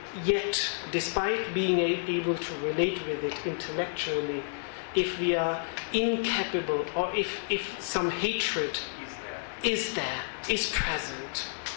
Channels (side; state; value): right; silent; digital silence